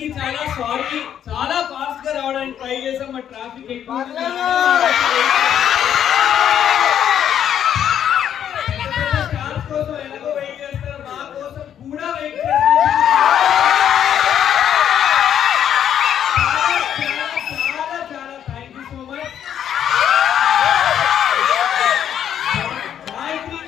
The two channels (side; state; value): right; quieter; 9.6 dB